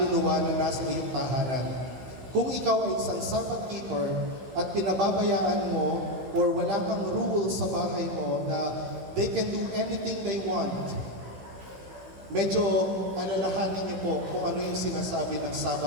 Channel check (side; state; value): left; late; 16 ms